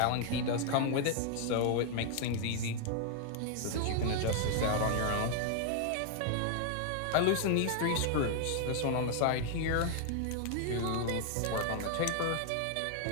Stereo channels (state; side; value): different; both; correlation 0.00